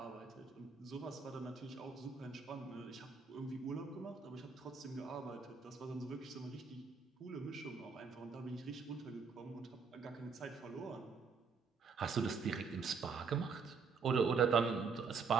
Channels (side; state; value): left; quieter; 5.4 dB